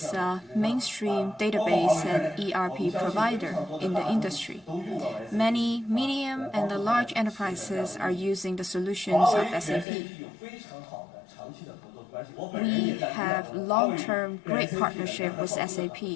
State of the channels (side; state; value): right; drops out; at 9.9 s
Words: a mainstream database and ERP provider in the industry. Many medium and large enterprises are using the solutions of SAP. We have long-term great partnership with